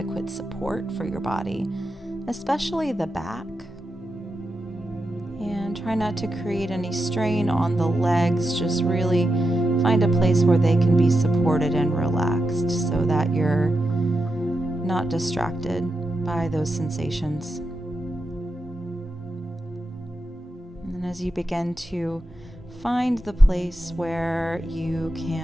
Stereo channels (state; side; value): normal; both; correlation 0.88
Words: support for your body, especially the back. And try not to create any strain on the legs. Just really find a place where they can be supported and relaxed so that you're not distracted by those sensations. And as you begin to find the place where you